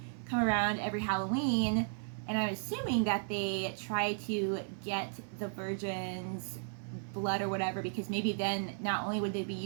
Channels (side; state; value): left; silent; 55 dB below the other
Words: come around every Halloween, and I'm assuming that they try to get the virgin's blood or whatever, because maybe then not only would they be